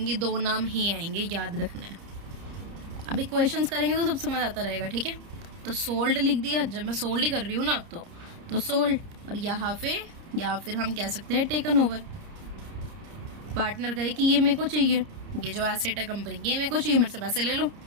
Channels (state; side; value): late; left; 30 ms